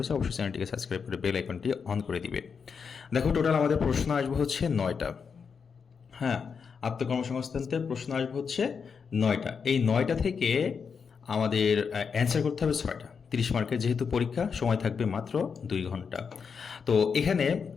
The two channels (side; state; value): right; quieter; 6.0 dB